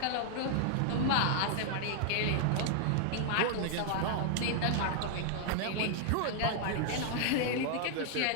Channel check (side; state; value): both; different; correlation 0.00